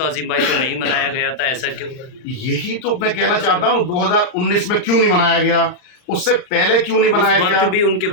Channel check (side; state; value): right; late; 39 ms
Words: अजीम भाई को नहीं मनाया गया था, ऐसा क्यों? यही तो मैं कहना चाहता हूँ, 2019 में क्यों नहीं मनाया गया, उससे पहले क्यों नहीं मनाया गया? उस वक्त भी उनके